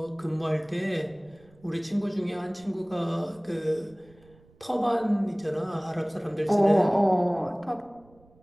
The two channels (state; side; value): noise; right; rumble, 28 dB below the sound